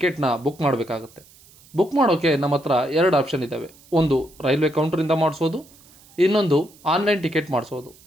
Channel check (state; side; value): noise; right; hiss, 26 dB below the sound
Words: ಬುಕ್ ಮಾಡಬೇಕಾಗುತ್ತೆ. ಬುಕ್ ಮಾಡೋಕ್ಕೆ ನಮ್ಮ ಹತ್ರ ಎರಡು ಆಪ್ಷನ್ ಇದ್ದಾವೆ. ಒಂದು ರೈಲ್ವೆ ಕೌಂಟ್ರಿಂದ ಮಾಡಿಸೋದು, ಇನ್ನೊಂದು ಆನ್ಲೈನ್ ಟಿಕೆಟ್ ಮಾಡಿಸೋದು.